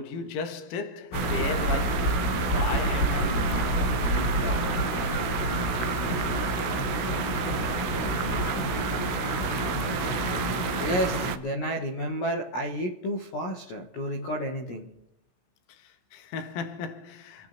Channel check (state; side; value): late; right; 16 ms